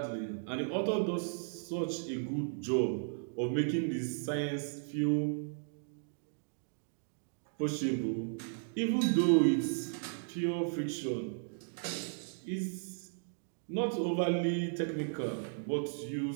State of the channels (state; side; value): silent; left; digital silence